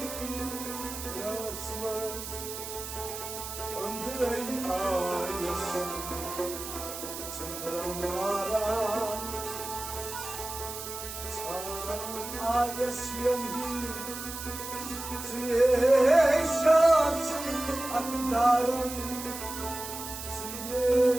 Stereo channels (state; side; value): noise; right; hiss, 8 dB below the sound